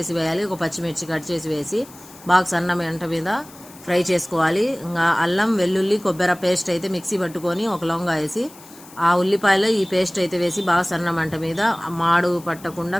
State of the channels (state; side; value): noise; left; hiss, 21 dB below the sound